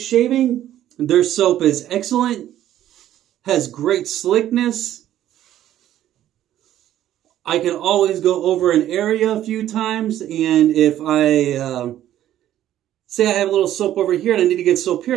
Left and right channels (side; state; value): left; quieter; 12.3 dB